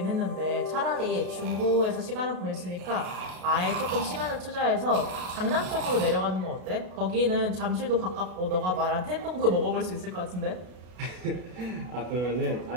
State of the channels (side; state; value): left; late; 33 ms